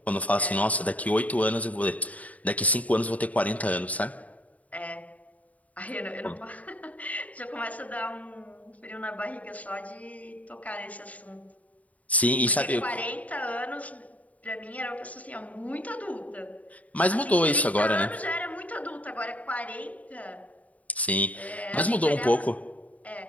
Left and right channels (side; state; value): right; late; 0.071 ms